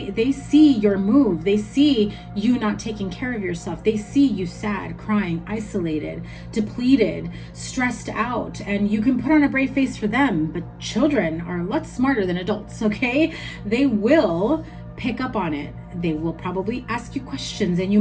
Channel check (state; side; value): identical; both; correlation 1.00